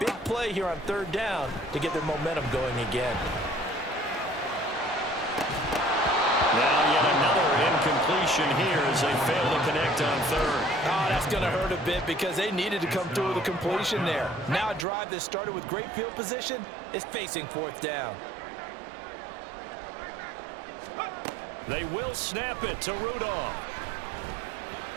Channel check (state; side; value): drops out; left; at 14.9 s